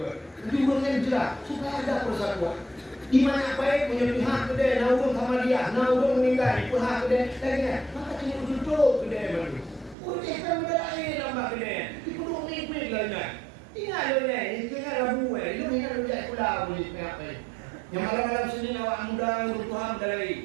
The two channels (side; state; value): left; drops out; at 10.0 s